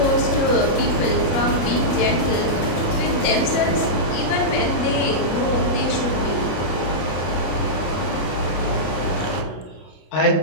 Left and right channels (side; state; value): right; late; 33 ms